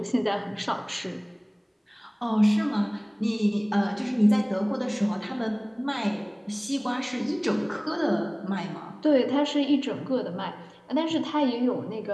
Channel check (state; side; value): identical; both; correlation 1.00